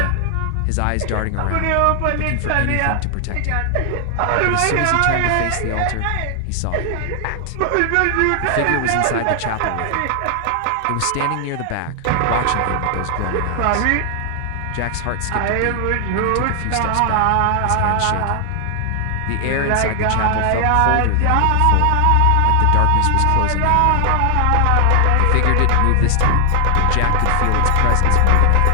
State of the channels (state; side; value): different; both; correlation 0.00